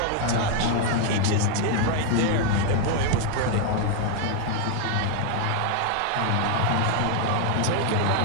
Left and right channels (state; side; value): different; both; correlation 0.00